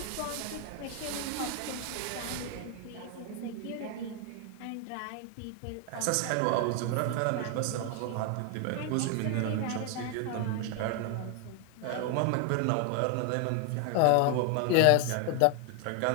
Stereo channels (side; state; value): both; different; correlation 0.01